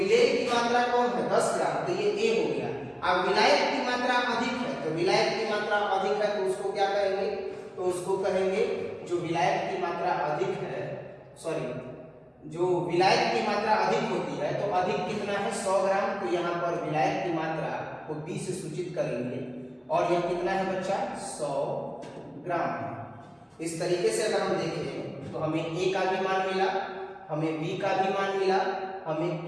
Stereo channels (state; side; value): identical; both; correlation 1.00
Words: की मात्रा कौन है? 10 ग्राम, तो ये A हो गया। अब विलायक की मात्रा अधिक है, तो विलायक की मात्रा अधिक है तो उसको क्या कहेंगे? तो उसको कहेंगे जो विलायक की मात्रा अधिक है, सॉरी, जो विलायक की मात्रा अधिक होती है, तो अधिक कितना है? 100 ग्राम। तो यहाँ पर विलायक की मात्रा को 20 से सूचित करेंगे, और यह कितना है बच्चा? 100 ग्राम है। इस तरीके से अगर हम देखें तो हमें A का भी मान मिला, हमें B का भी मान मिला, हमें